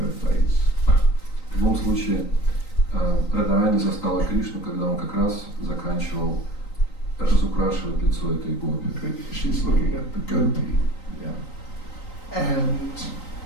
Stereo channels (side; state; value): right; late; 3.9 ms